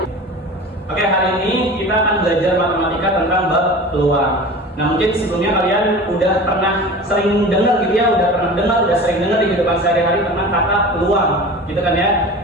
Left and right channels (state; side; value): normal; both; correlation 0.36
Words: Oke, hari ini kita akan belajar matematika tentang bab peluang. Nah, mungkin sebelumnya kalian udah pernah sering dengar gitu ya, udah sering dengar di kehidupan sehari-hari tentang kata peluang, gitu kan ya.